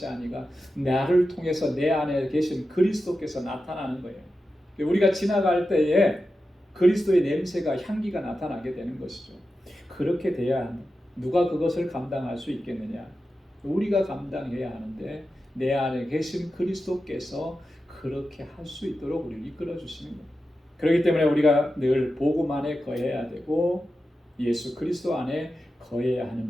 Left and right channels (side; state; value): both; normal; correlation 0.91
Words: 아니라 나를 통해서 내 안에 계신 그리스도께서 나타나는 거예요. 우리가 지나갈 때에 그리스도의 냄새가 향기가 나타나게 되는 것이죠. 그렇게 돼야 합니다. 누가 그것을 감당할 수 있겠느냐? 우리가 감당해야 하는데 내 안에 계신 그리스도께서 그렇게 할 수 있도록 우리를 이끌어 주시는 거예요. 그렇기 때문에 우리가 늘 복음 안에 거해야 되고 예수 그리스도 안에 거해야 하는